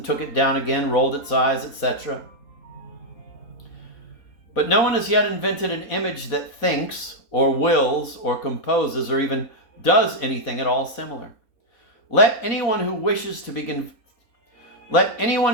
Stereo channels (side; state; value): right; late; 3.9 ms